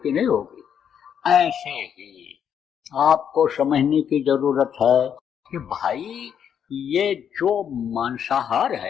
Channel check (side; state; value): right; quieter; 8.4 dB